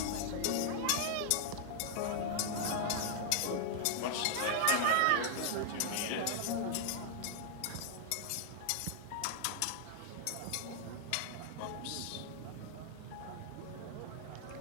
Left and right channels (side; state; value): both; different; correlation -0.01